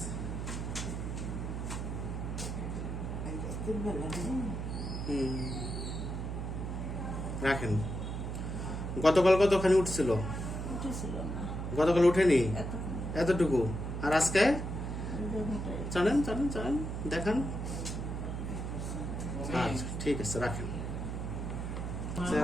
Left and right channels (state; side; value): noise; right; hum, 4 dB below the sound